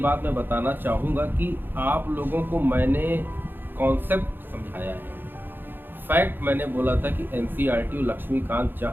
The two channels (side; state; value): left; late; 0.097 ms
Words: मैं बताना चाहूँगा कि आप लोगों को मैंने कॉन्सेप्ट समझाया है, फैक्ट मैंने बोला था कि एनसीईआरटी और लक्ष्मीकांत